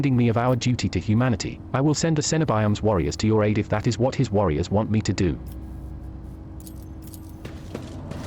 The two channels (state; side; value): identical; both; correlation 1.00